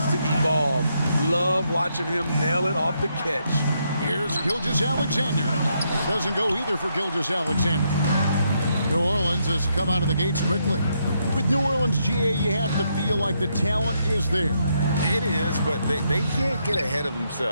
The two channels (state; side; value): inverted; both; correlation -0.77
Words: to evolve. Love watching him nail it off the catch. Here's Gilgeous-Alexander. That doesn't go either for Gilgeous-Alexander. New Orleans has come out of the gates quickly. With New Orleans, GA, you have to feel like the talent is there. It is, but they can't get ahead of